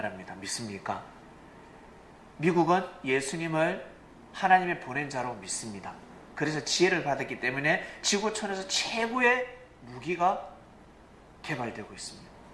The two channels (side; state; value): both; identical; correlation 1.00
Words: 믿습니까? 미국은 예수님을 하나님의 보낸 자로 믿습니다. 그래서 지혜를 받았기 때문에 지구촌에서 최고의 무기가 개발되고 있습니다.